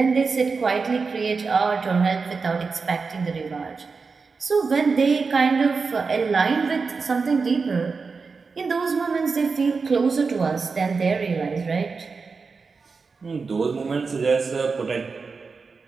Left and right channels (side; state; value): left; quieter; 4.7 dB